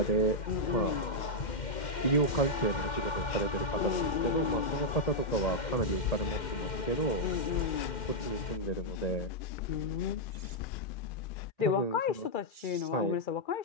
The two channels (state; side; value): late; right; 2.1 ms